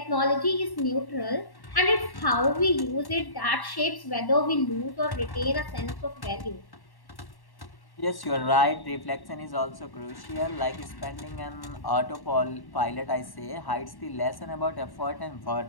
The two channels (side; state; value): right; late; 1.1 ms